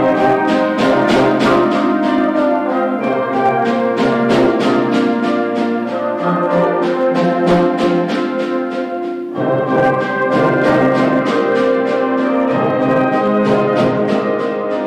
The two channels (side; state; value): both; identical; correlation 1.00